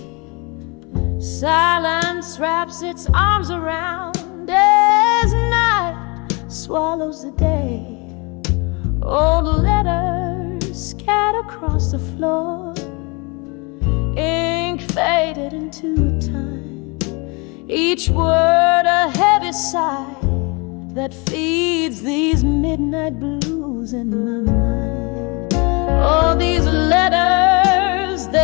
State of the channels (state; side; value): quieter; right; 29.5 dB